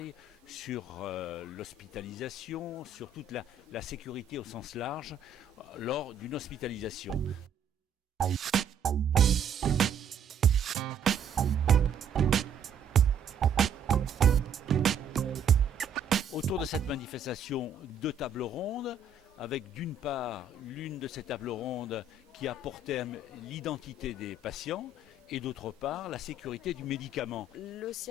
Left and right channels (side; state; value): left; quieter; 4.7 dB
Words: sur l'hospitalisation, sur toute la sécurité au sens large lors d'une hospitalisation. Autour de cette manifestation, deux tables rondes, avec d'une part l'une de ces tables rondes qui a pour thème l'identité des patients et d'autre part la sécurité du médicament. Le